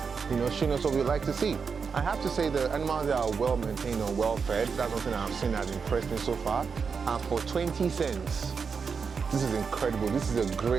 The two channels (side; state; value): left; quieter; 5.7 dB